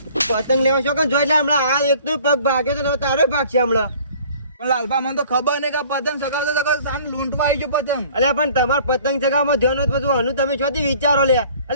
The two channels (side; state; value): both; inverted; correlation -0.52